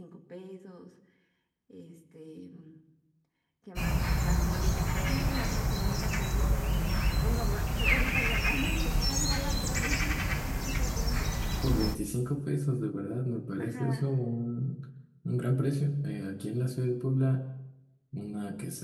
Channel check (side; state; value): both; identical; correlation 1.00